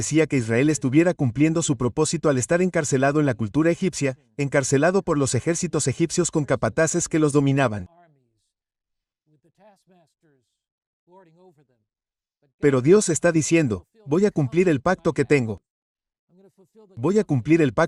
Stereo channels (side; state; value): both; identical; correlation 1.00